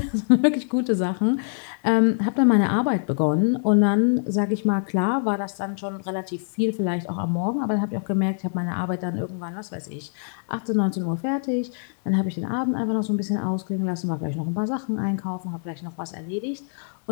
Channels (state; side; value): silent; right; digital silence